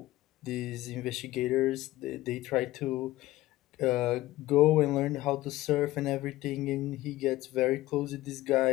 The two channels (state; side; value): quieter; right; 16.9 dB